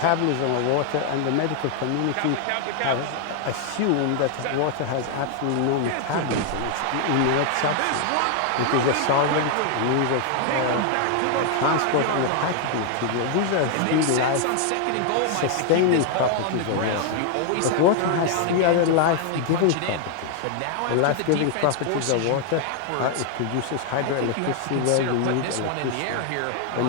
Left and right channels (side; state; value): both; different; correlation 0.00